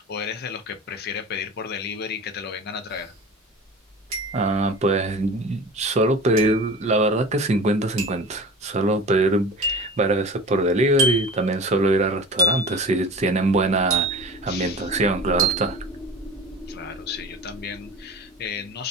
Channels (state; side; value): normal; both; correlation 0.36